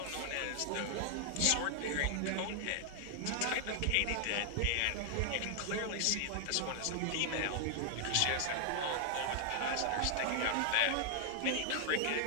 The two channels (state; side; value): different; both; correlation 0.00